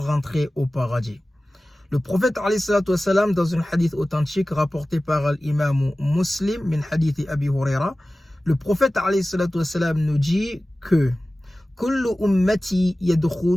au paradis. Le prophète alayhi salatu wassalam, dans un hadith authentique rapporté par l'imam Muslim, min hadith Abi Huraira, le prophète alayhi salatu wassalam nous dit que Kullu ummati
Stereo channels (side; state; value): both; normal; correlation 0.97